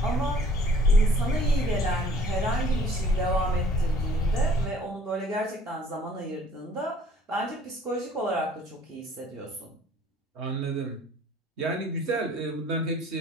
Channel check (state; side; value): normal; both; correlation 0.54